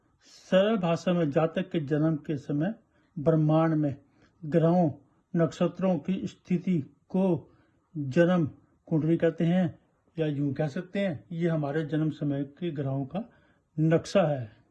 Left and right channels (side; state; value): both; identical; correlation 1.00